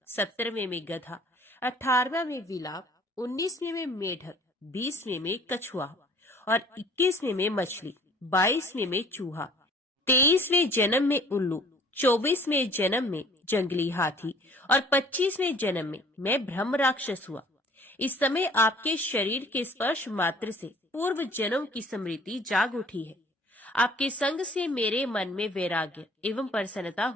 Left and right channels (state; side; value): normal; both; correlation 0.53